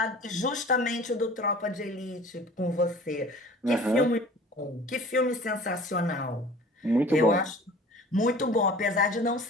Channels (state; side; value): normal; both; correlation 0.45